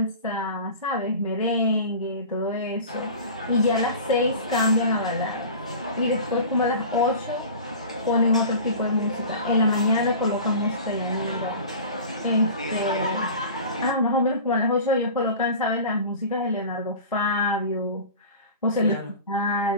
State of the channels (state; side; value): inverted; both; correlation -0.37